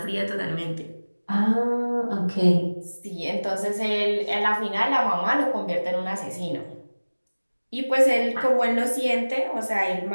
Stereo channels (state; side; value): inverted; both; correlation -1.00